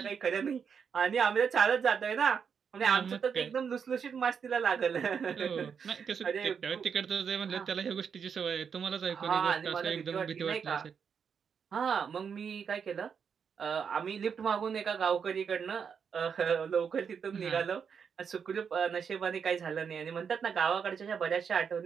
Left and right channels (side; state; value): left; quieter; 6.8 dB